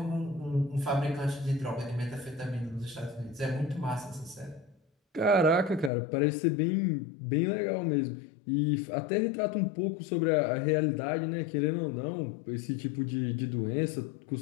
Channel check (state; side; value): drops out; right; at 5.9 s